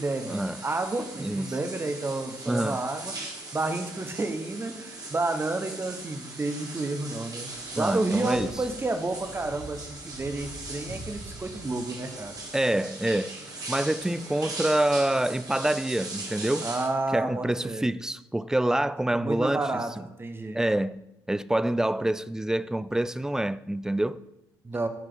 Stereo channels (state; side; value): normal; both; correlation 0.90